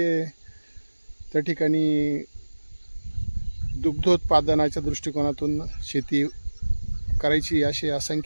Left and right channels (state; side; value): inverted; both; correlation -1.00